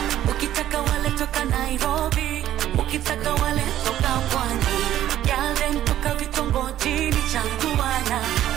Ukitaka wale toka Nairobi, ukitaka wale toka Pwani, yale toka vitongojini Changuana.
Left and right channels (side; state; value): left; quieter; 12.4 dB